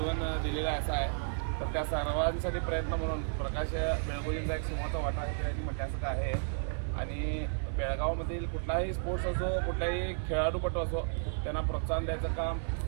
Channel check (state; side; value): silent; left; 56 dB below the other